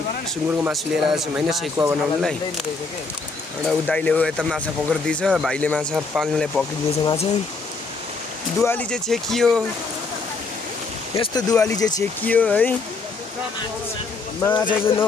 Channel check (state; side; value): quieter; right; 4.1 dB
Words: मासु लिएर आएको छौँ होइन सेकुवा बनाउनुलाई। एउटा ऊ दाइले यता माछा पक्रिदिएछ, भाइले माछा पाल्नुलाई पक्रिदिएछ माछा। दुवाली चाहिँ छेकियो, यस्तो दुवाली चाहिँ छेकियो है। माछा चाहिँ